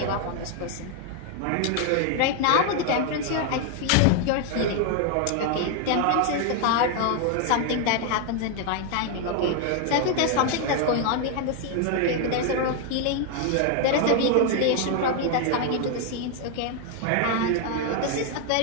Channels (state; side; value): different; both; correlation 0.01